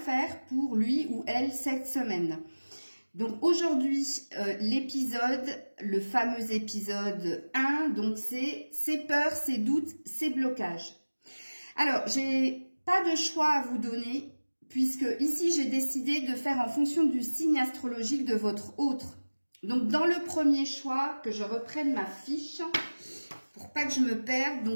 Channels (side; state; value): both; inverted; correlation -1.00